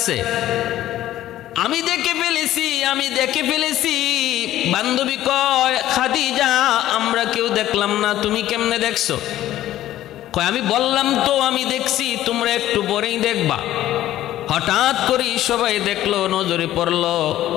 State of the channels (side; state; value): right; quieter; 13.7 dB